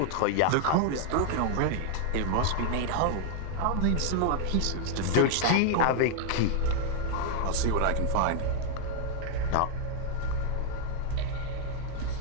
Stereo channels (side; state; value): both; different; correlation 0.00